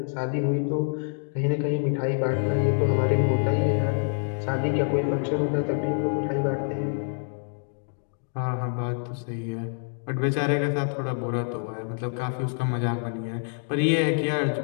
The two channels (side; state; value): right; silent; 61 dB below the other